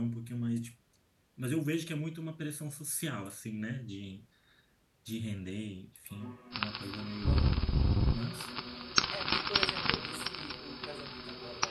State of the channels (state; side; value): identical; both; correlation 1.00